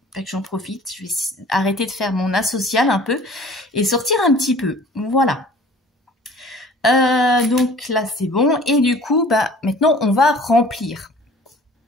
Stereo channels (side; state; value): both; normal; correlation 0.48